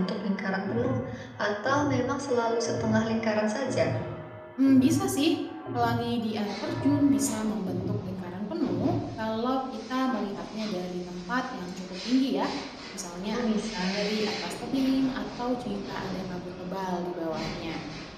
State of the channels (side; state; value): both; identical; correlation 1.00